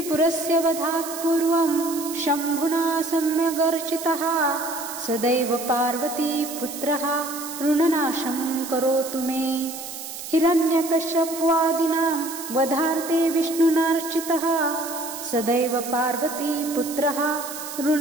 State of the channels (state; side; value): noise; right; hiss, 10 dB below the sound